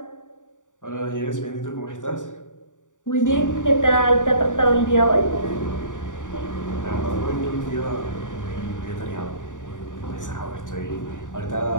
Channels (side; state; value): right; late; 0.86 ms